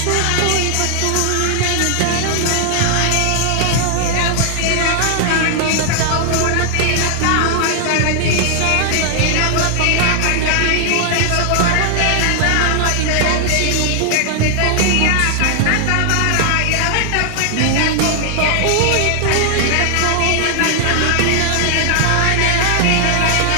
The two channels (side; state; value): both; different; correlation 0.00